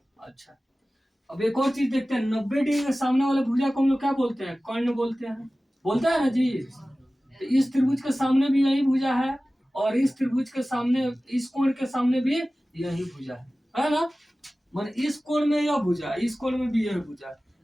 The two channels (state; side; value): normal; both; correlation 0.96